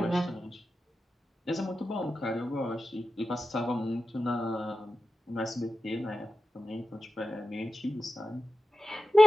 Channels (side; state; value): both; normal; correlation 0.93